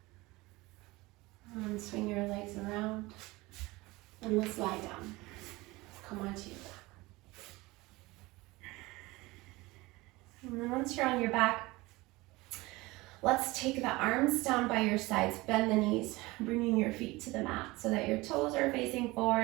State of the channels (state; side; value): quieter; left; 21.4 dB